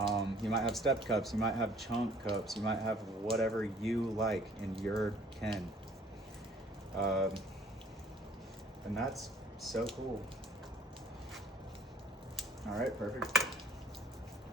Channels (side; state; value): both; normal; correlation 0.55